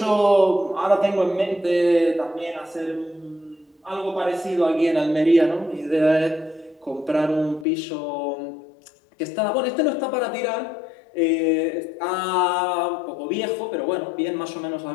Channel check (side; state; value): right; drops out; at 7.7 s